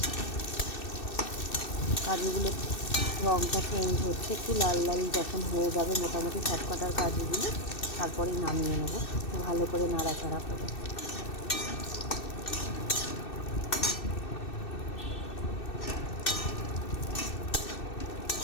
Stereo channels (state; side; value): late; right; 2.6 ms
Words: কাজুগুলো রঙটা চেঞ্জ হচ্ছে, একটু লাল লাল যখন হয়ে যাবে মোটামুটি সবকটার কাজুগুলো, তারপরেই নামিয়ে নেব ভালো করে নাড়াচাড়া করে।